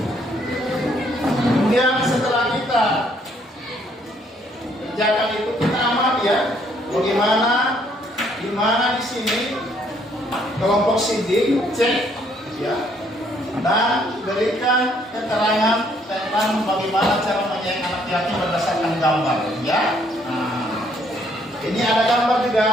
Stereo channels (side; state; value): both; normal; correlation 0.67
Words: Kemudian setelah kita kerjakan itu, kita amati ya, bagaimana, di mana di sini kelompok sidik, cek, ya, dan berikan keterangan tentang bagaimana cara menyayangi anak yatim berdasarkan gambar, ya. Ini ada gambar